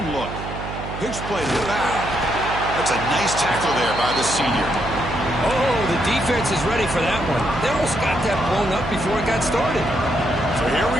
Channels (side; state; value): right; noise; hum, 8 dB below the sound